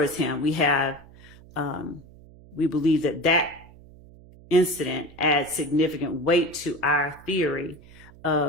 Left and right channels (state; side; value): noise; right; hum, 22 dB below the sound